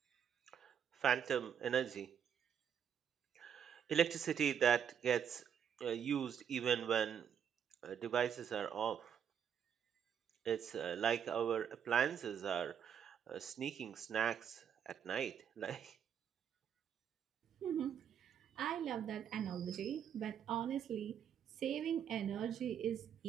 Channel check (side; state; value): left; quieter; 8.4 dB